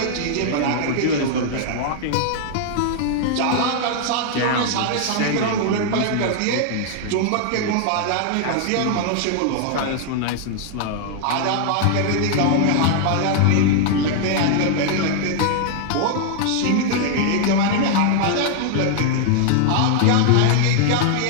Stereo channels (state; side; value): different; both; correlation -0.01